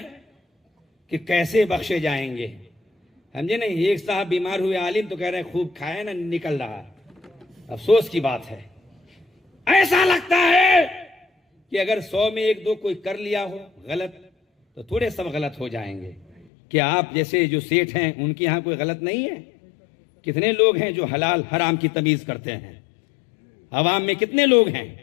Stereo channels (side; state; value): right; drops out; at 16.4 s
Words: کہ کیسے بخشے جائیں گے۔ سمجھے نہیں، ایک صاحب بیمار ہوئے عالم تو کہہ رہے ہیں خوب کھائے نا نکل رہا ہے۔ افسوس کی بات ہے، ایسا لگتا ہے کہ اگر 100 میں 1-2 کوئی کر لیا ہو غلط تو تھوڑے سب غلط ہو جائیں گے۔ کیا آپ جیسے جو سیٹھ ہیں ان کے ہاں کوئی غلط نہیں ہے؟ کتنے لوگ ہیں جو حلال حرام کی تمیز کرتے ہیں؟ عوام میں کتنے لوگ ہیں؟